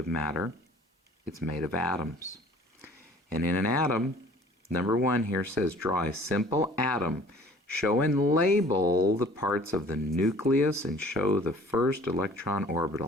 matter, it's made of atoms. And in an atom, number 1 here says, draw a simple atom. Show and label the parts of the nucleus and show the first electron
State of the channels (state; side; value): normal; both; correlation 0.51